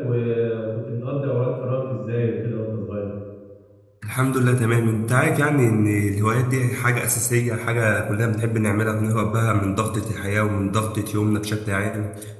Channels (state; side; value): identical; both; correlation 1.00